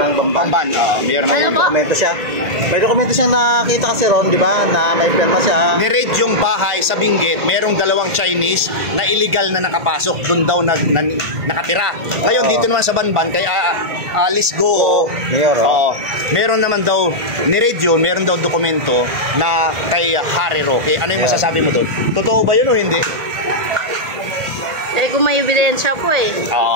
Bamban. Mayor ng Ano po? Dokumento siya. May dokumento siyang nakita kasi ron, di ba, na may pirma siya. Ni-raid yung bahay sa Benguet, merong dalawang Chinese na illegal na nakapasok, doon daw nakatira. Ngayon dito naman sa Banban kay Alice Goo, mayor. Meron naman daw ni-raid yun, meron daw dokumento na kay Harry Roque. Ano yung masasabi mo doon? Totoo ba yun o hindi? Kung may ebidensya po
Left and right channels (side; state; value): left; late; 1.5 ms